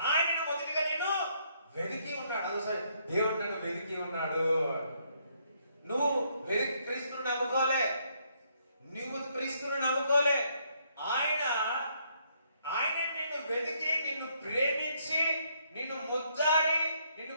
ఆయనను మొదటిగా నేను వెతికి ఉన్నాడు. అదే సరే, దేవుడు నన్ను వెతికి ఉన్నాడు. నువ్వు క్రీస్తును నమ్ముకోలే, నువ్వు క్రీస్తును నమ్ముకోలే. ఆయన నిన్ను వెతికి నిన్ను ప్రేమించి నిన్ను ముద్దాడి నిన్ను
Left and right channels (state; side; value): inverted; both; correlation -0.71